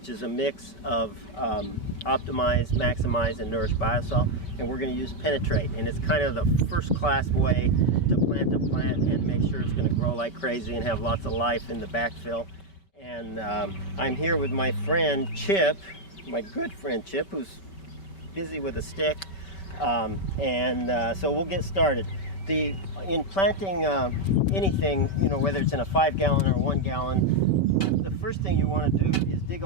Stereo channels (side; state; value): right; late; 5.2 ms